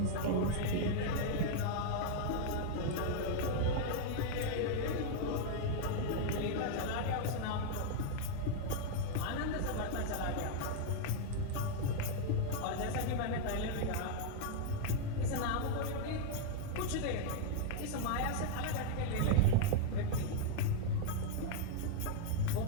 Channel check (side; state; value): both; different; correlation 0.00